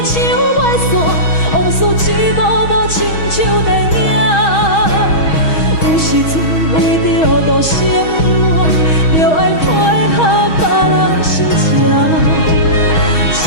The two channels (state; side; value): late; right; 6.3 ms